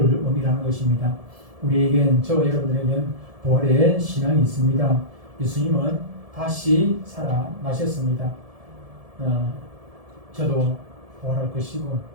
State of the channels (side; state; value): left; late; 1.7 ms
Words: 의미하는 것입니다. 우리에겐, 저와 여러분들에겐 부활의 신앙이 있습니다. 예수님은 다시 살아나셨습니다. 저도 부활할 것이고